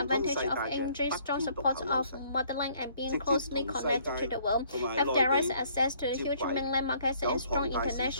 通世 advantage 界 of 嘅 enjoying 不 strong 偏獨 support 有優 of 勢， motherland and 直 being 接 closely 同世 connected to 界 the world, 同埋 have 內 direct 地 access to the 接 huge 軌， mainland markets 有 and strong 龐大市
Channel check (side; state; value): both; inverted; correlation -0.62